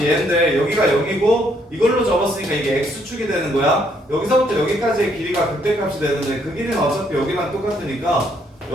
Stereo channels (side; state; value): both; normal; correlation 0.70